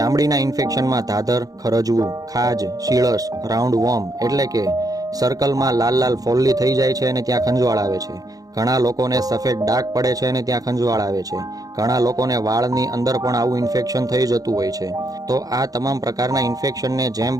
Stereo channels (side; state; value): left; late; 0.18 ms